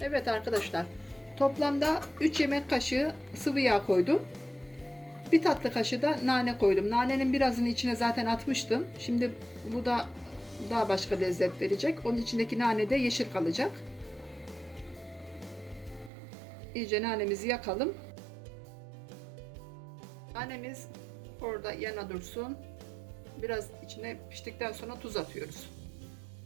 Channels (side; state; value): left; drops out; at 16.1 s